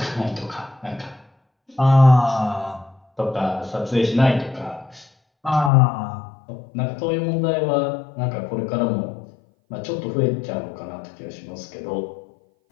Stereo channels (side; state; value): right; drops out; at 5.7 s